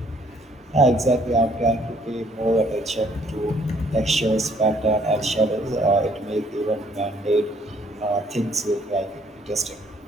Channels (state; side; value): normal; both; correlation 0.63